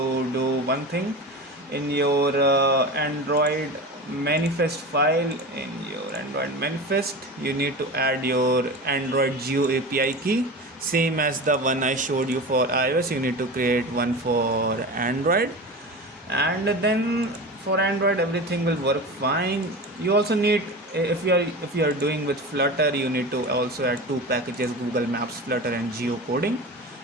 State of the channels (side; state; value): both; normal; correlation 0.29